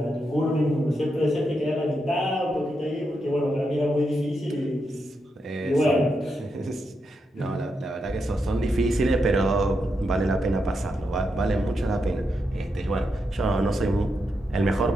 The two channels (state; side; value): normal; both; correlation 0.84